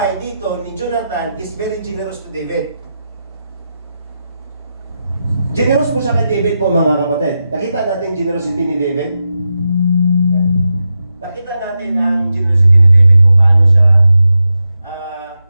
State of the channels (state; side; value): inverted; both; correlation -0.88